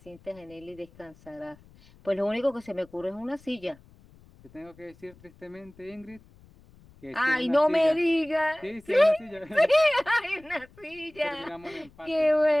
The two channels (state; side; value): noise; left; rumble, 26 dB below the sound